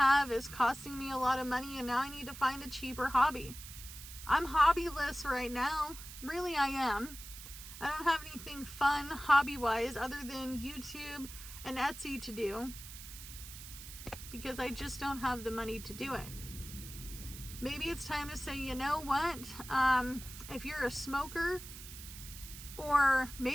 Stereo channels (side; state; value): right; noise; hiss, 13 dB below the sound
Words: is costing me a lot of money and now I need to find a cheaper hobby. I'm hobbyless right now. Really, I am. I don't have anything fun hobby-wise other than YouTube and Etsy to do because I just don't have the money to do it. Maybe it's time to say, you know what? If you're a smoker or